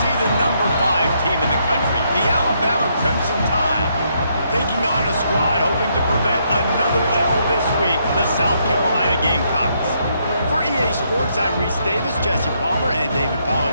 the number 5 team in the country, the Alabama Crimson Tide, taking on a squad hoping to prevent another L this week, the South Carolina Gamecocks. For EA Sports, I'm Reese Davis, Jesse Palmer, and David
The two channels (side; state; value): both; inverted; correlation -0.74